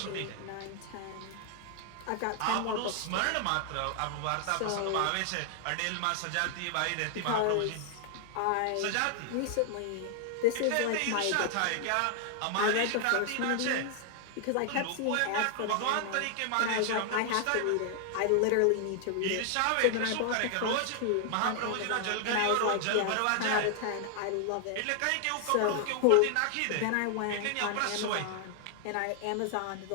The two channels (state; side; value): different; both; correlation 0.00